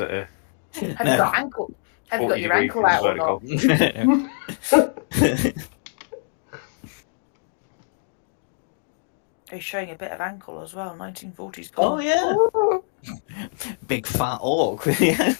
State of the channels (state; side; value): silent; right; digital silence